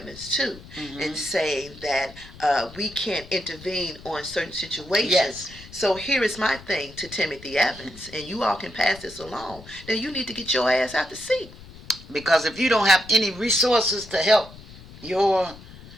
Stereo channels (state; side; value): noise; left; rumble, 18 dB below the sound